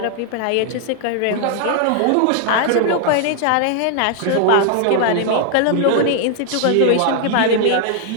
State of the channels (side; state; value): both; different; correlation 0.00